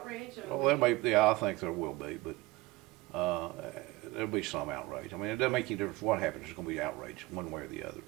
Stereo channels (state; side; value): quieter; left; 20.7 dB